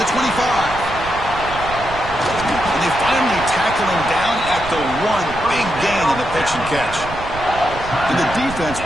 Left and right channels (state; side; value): noise; right; rumble, 11 dB below the sound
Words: 25. And they finally tackle him down at the 1. Big gain on the pitch and catch. And the defense